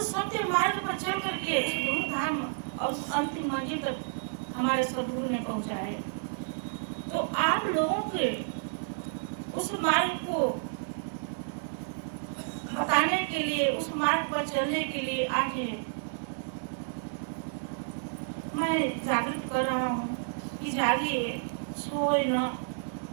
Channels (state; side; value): silent; left; 57 dB below the other